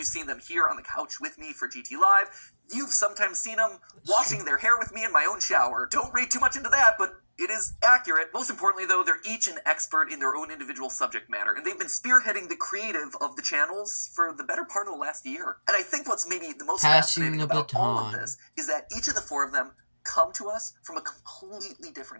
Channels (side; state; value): both; inverted; correlation -1.00